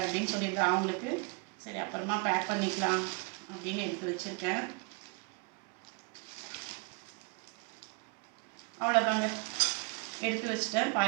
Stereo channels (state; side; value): quieter; left; 33.4 dB